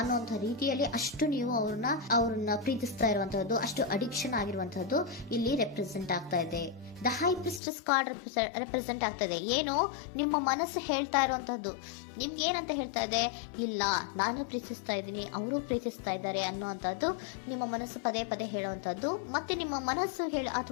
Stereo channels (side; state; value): right; drops out; at 7.6 s